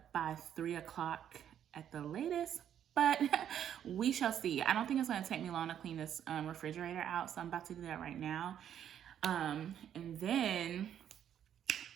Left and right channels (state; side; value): quieter; left; 9.7 dB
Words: by 3 o'clock at the latest, but we shall see. I don't think it's gonna take me long to clean this refrigerator out, so I'm about to do that right now. And then